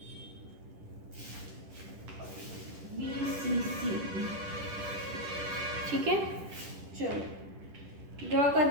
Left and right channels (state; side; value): late; left; 10 ms